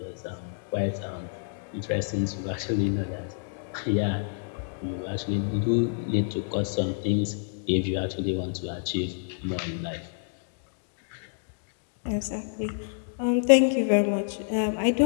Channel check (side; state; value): right; silent; digital silence